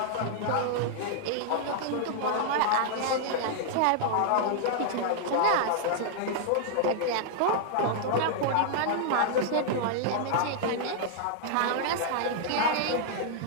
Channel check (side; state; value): both; different; correlation -0.01